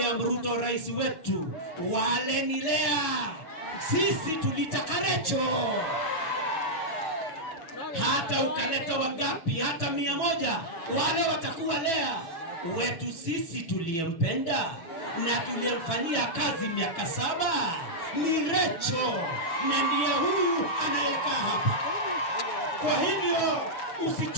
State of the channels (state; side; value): late; right; 6.2 ms